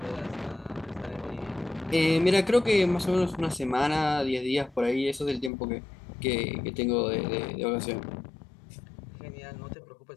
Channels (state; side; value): drops out; right; at 5.5 s